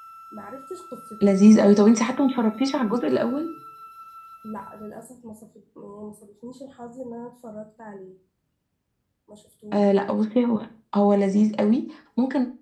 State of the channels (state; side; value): identical; both; correlation 1.00